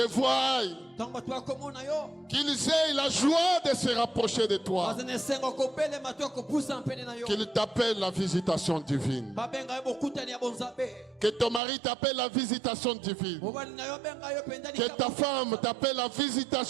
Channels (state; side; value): drops out; left; at 11.6 s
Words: voient, qu'ils aient la joie de se rapprocher de toi, qu'ils t'appellent la visitation divine. Que ton mari t'appelle la visitation divine. Que ta femme t'appelle la